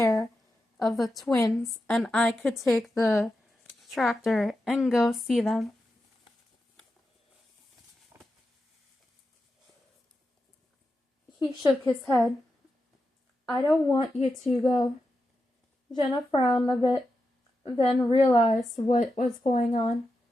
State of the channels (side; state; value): both; normal; correlation 0.89